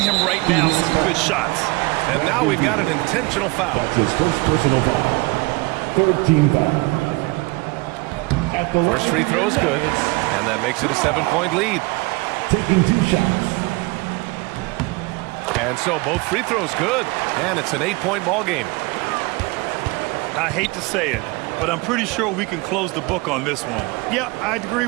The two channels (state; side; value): quieter; left; 25.1 dB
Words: right now some good shots. And now we've got an intentional foul. That's his first personal foul. 3rd team foul. At the First free throw is good, and that makes it a 7-point lead. Taking 2 shots. And so both free throws good, and it's an 8-point ball game. I hate to say it, but I'm pretty sure we can close the book on this one. Yeah, I'd agree